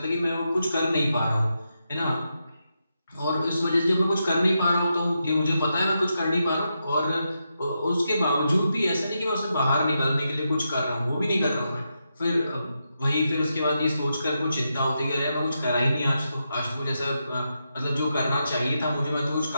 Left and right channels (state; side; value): inverted; both; correlation -0.85